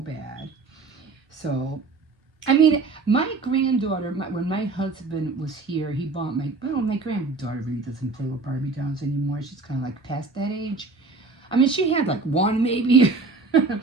So, I mean, my granddaughter, when my husband was here, he bought my granddaughter really doesn't play with Barbie dolls anymore. She's kind of like past that age. I mean, she had like one maybe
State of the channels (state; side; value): quieter; left; 3.9 dB